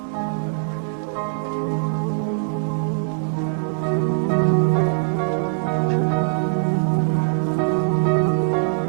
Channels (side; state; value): left; silent; digital silence